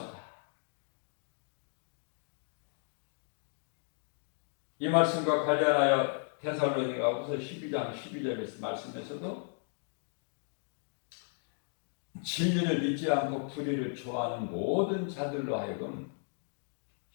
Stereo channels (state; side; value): silent; right; 54 dB below the other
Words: 이 말씀과 관련하여 데살로니가후서 12장 12절 말씀에서도 진리를 믿지 않고 불의를 좋아하는 모든 자들로 하여금